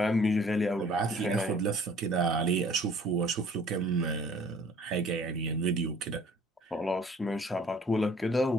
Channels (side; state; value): both; normal; correlation 0.54